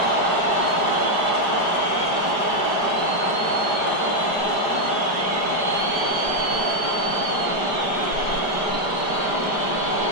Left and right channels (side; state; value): right; late; 4.9 ms